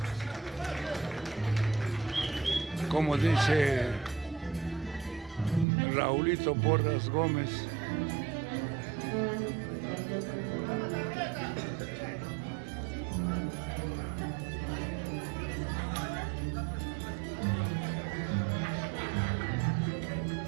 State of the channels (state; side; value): drops out; left; at 5.7 s